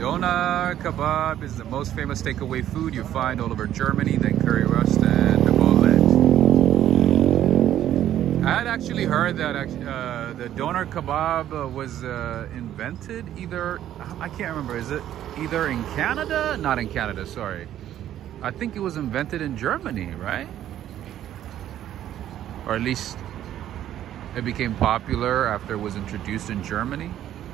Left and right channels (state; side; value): quieter; left; 11.7 dB